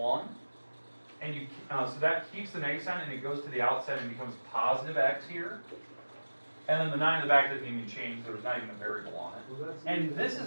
And so that keeps the negative sign and it goes to the outside and becomes positive x here. And then the 9 in the back doesn't even change, there's not even a variable on it. And this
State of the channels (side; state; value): both; inverted; correlation -1.00